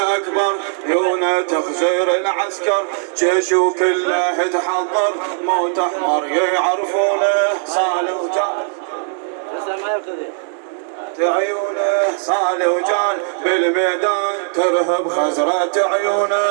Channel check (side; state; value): left; silent; digital silence